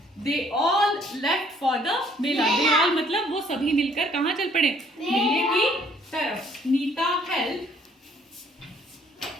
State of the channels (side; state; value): both; normal; correlation 0.62